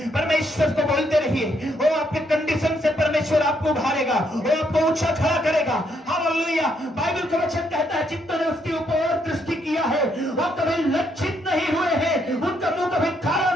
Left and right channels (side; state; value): both; normal; correlation 0.73